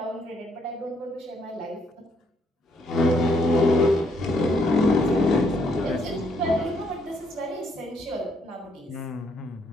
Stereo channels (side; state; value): both; normal; correlation 0.71